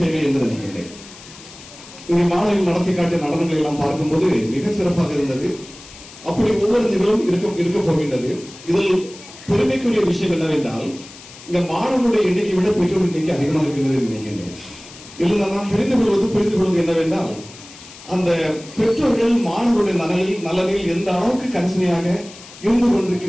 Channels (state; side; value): noise; left; hiss, 18 dB below the sound